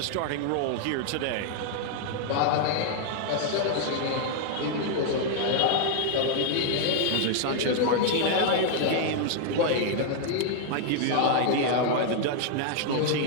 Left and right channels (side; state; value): both; different; correlation 0.00